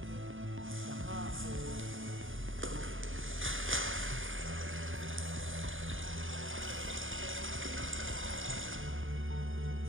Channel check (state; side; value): late; left; 0.58 ms